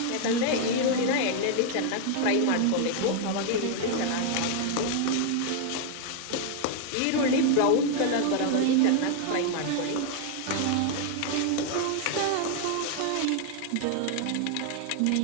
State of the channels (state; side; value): different; both; correlation 0.00